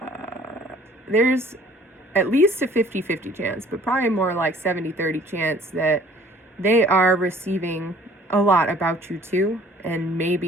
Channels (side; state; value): both; normal; correlation 0.54